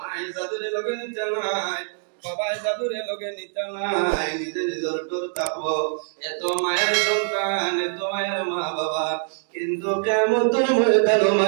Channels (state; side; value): silent; left; digital silence